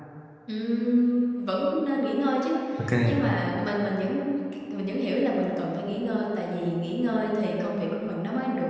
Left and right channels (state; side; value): identical; both; correlation 1.00